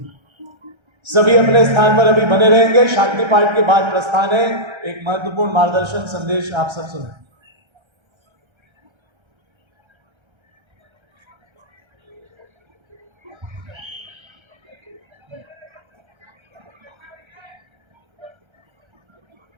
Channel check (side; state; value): left; late; 1.3 ms